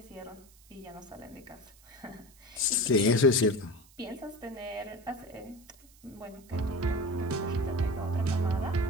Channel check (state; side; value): noise; right; hiss, 26 dB below the sound